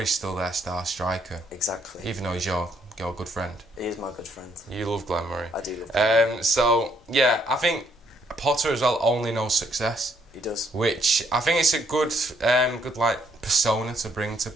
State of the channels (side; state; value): both; normal; correlation 0.69